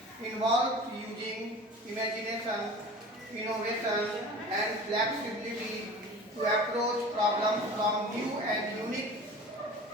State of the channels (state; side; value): normal; both; correlation 0.39